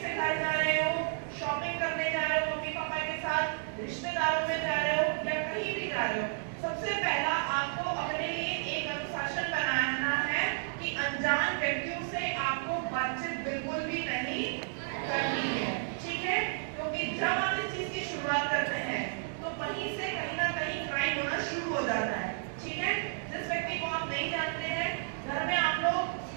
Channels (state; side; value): silent; left; digital silence